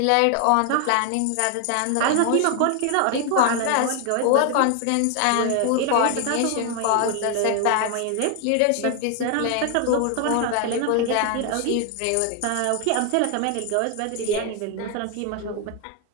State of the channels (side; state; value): both; different; correlation 0.00